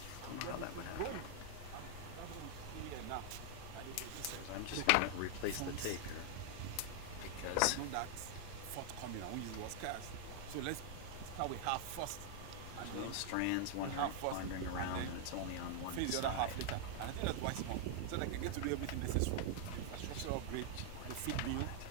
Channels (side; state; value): both; different; correlation 0.00